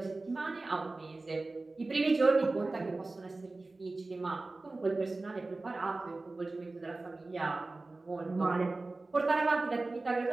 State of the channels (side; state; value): left; quieter; 3.3 dB